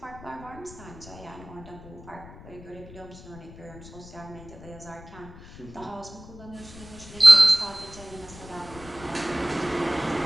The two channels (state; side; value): noise; left; rumble, 17 dB below the sound